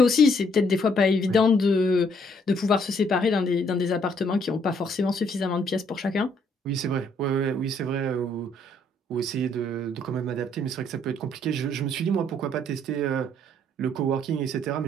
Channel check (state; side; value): normal; both; correlation 0.67